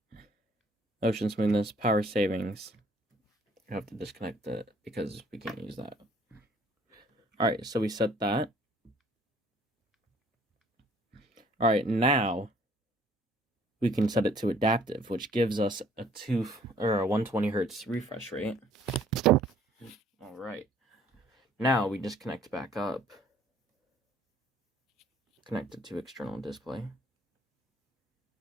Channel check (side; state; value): both; normal; correlation 0.58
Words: motion smoothness, power savings. You have to disconnect it because we can't use that. Alright, so we set that. Alright, now we can set it to adaptive, which gives us a 120 hertz refresh rate. Alright. Now we just connect back up. Connect it to external display.